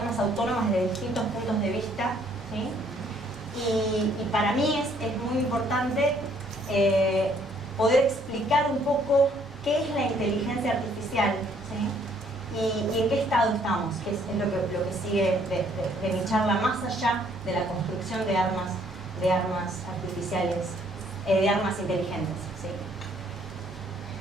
autónomas desde distintos puntos de vista, ¿sí? Y para mí es muy importante poder explicar un poco qué es la inteligencia artificial, ¿sí? Y en qué estado estamos, que es lo que sigue de mi charla, más allá de la construcción de armas artificiales, de armas inteligentes, ¿sí?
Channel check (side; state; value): both; normal; correlation 0.64